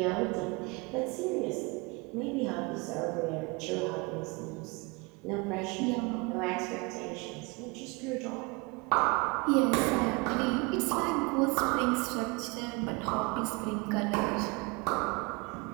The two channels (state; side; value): quieter; left; 27.7 dB